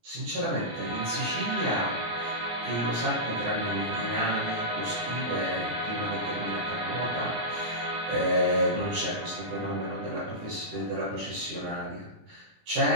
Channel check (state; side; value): late; left; 18 ms